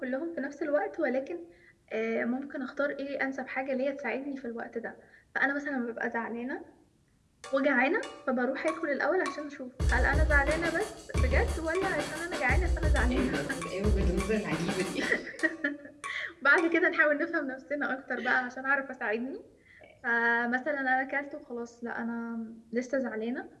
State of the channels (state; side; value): identical; both; correlation 1.00